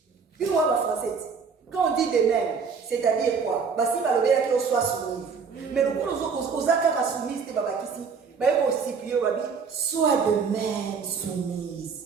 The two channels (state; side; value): quieter; left; 5.6 dB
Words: Puis moi, ma française, quand on dit de même, c'est-à-dire quoi? Bah, si ma lobé qu'on soit soumise. Mais le coup, aux accords soumises, c'est pas ici. Mais aussi, puis sois de même soumise.